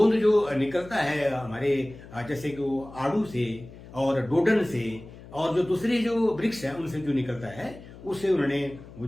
जो निकलता है हमारे जैसे कि वो आड़ू से और डोडन से और जो दूसरे जो वृक्ष है उनसे जो निकलता है, उससे उन्होंने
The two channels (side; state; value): left; noise; hum, 18 dB below the sound